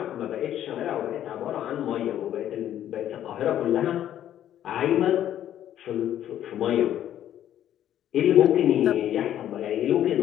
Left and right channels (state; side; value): quieter; right; 11.3 dB